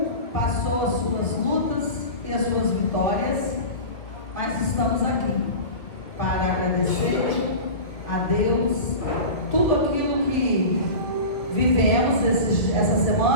passou as suas lutas e as suas vitórias, mas estamos aqui para agradecer a Deus tudo aquilo que vivemos essa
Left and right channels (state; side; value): late; right; 2.2 ms